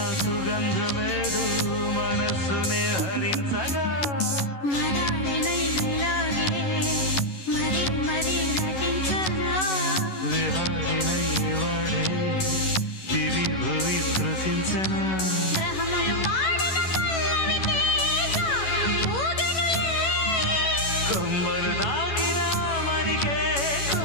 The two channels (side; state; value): right; late; 11 ms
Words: సుగంధమేదు మనస్సునే హరించగా మరాళినైలాగే మరీ మరీ నటించనా విహారినై వాడే దివి భువి స్పృశించనా గ్రహములు పాడిన పల్లవికి జాబిలి ఊగెనులే కొమ్మను తాకిన మరికే